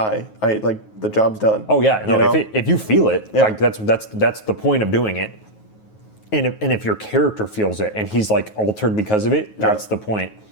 the job's done. Oh, yeah. No, if you feel it, like, that's the point of doing it. And if your character feels it and he's, like, altered because of it, that's the point.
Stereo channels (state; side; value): late; right; 9.4 ms